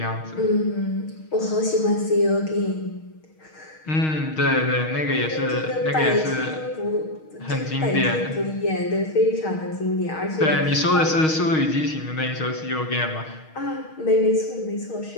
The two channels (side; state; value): right; late; 6.4 ms